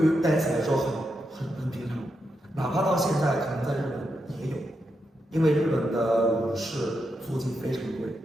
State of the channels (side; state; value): both; normal; correlation 0.85